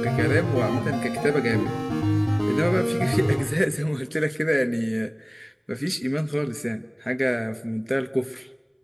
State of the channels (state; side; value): identical; both; correlation 1.00